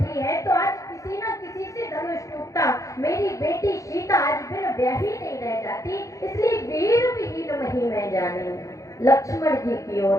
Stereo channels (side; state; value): right; late; 0.16 ms